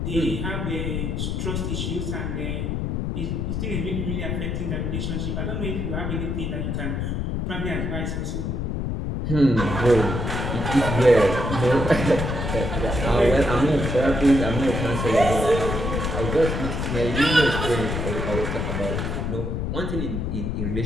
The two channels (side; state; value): left; noise; rumble, 1 dB below the sound